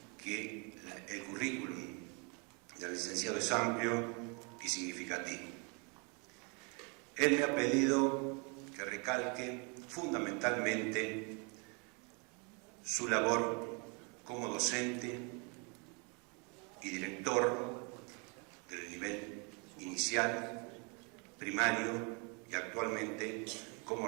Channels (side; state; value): left; quieter; 33.6 dB